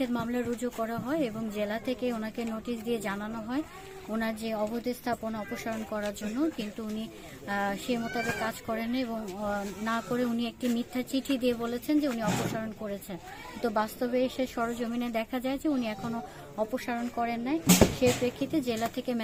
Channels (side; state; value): both; identical; correlation 1.00